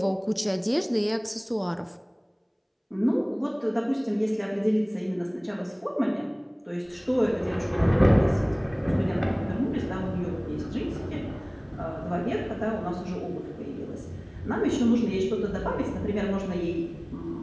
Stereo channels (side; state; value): both; identical; correlation 1.00